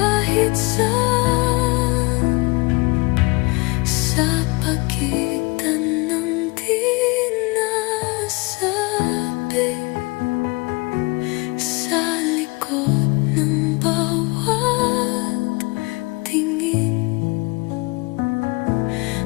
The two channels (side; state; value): right; quieter; 26.4 dB